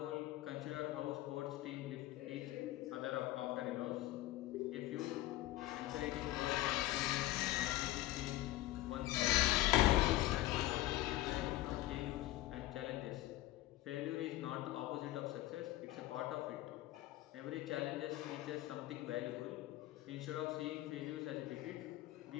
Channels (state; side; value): quieter; right; 16.5 dB